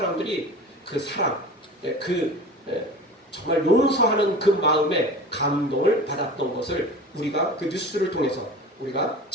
그 사랑, 정말 용서하는 그 마음에 감동을 받았던 것을 우리가 그 뉴스를 통해서 우리가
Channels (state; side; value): normal; both; correlation 0.36